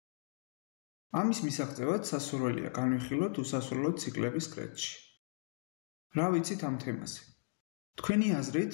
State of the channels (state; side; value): silent; right; digital silence